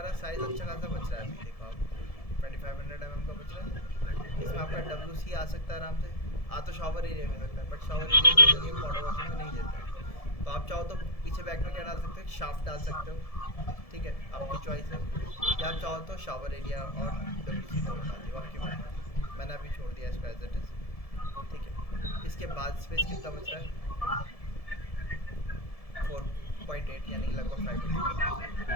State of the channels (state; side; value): late; right; 1.7 ms